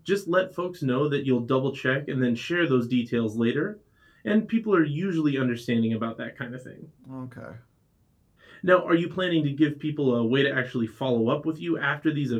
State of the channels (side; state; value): both; identical; correlation 1.00